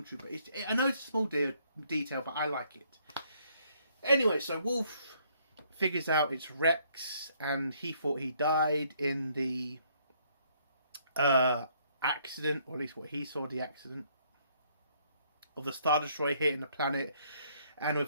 trooper. I know it's a small detail, but I like it. Anyway, so Wolf figures out it's Rex, and he thought he died in the accident, or at least what he saw, the accident of the Star Destroyer hitting the planet, and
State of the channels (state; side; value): inverted; both; correlation -0.67